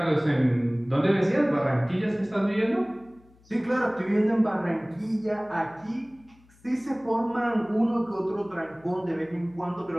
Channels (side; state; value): left; noise; hum, 29 dB below the sound